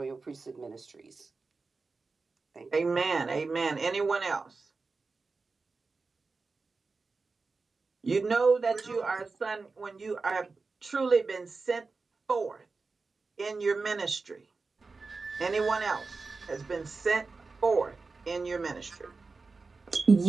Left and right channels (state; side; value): quieter; left; 4.1 dB